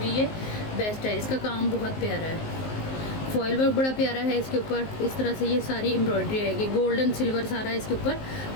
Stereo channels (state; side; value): late; right; 19 ms